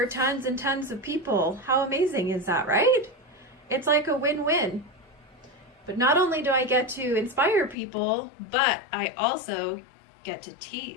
tons and tons of people. How amazing is that, right? It's like a win-win. But not only do I get to inspire people, but I also get to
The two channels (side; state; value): right; drops out; at 7.8 s